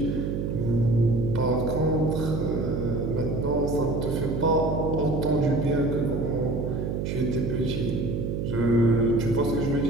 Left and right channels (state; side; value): noise; right; hum, 2 dB below the sound